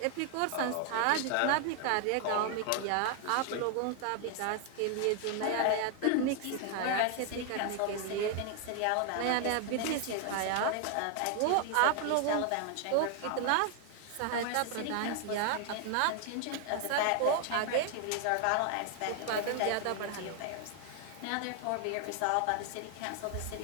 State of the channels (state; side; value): different; both; correlation 0.00